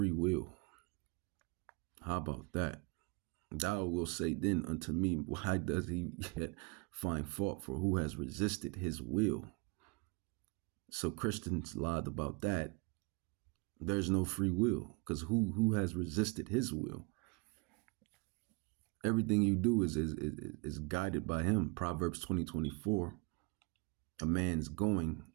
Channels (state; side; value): quieter; left; 28.8 dB